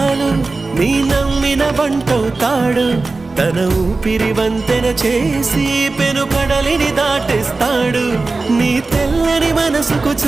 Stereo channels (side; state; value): left; quieter; 3.6 dB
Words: నీ నమ్మిన బంటవుతాడు. తన ఊపిరి వంతెన చేసి పెనుకడలిని దాటేస్తాడు. నీ తెల్లని మనసుకు